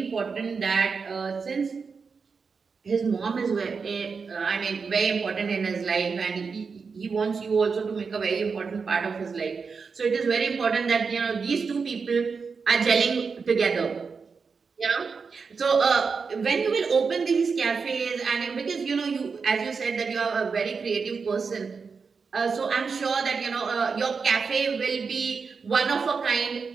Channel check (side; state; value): left; quieter; 5.2 dB